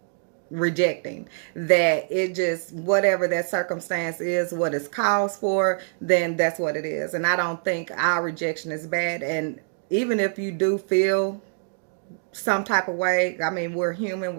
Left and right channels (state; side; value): silent; left; digital silence